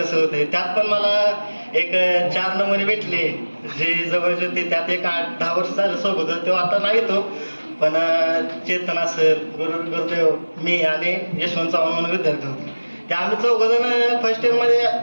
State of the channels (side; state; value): both; inverted; correlation -1.00